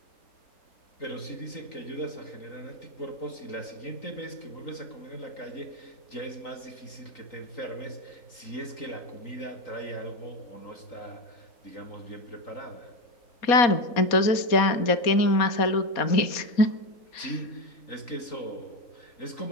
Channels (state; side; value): late; right; 4.2 ms